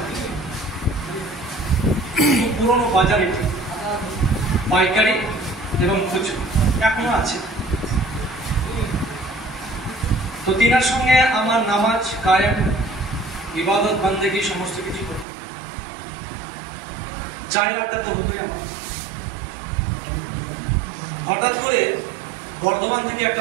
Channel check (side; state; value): left; drops out; at 15.2 s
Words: পুরনো বাজারে পাইকারি এবং খুচরো এখনো আছে। তো তিনার সঙ্গে আমার নামাজ কায়েম, ইবাদত বান্দেগি সমস্ত কিছু করতে চায়ের আড্ডা তো হতোই আমার। হঠাৎ করে বর্ধমান থেকে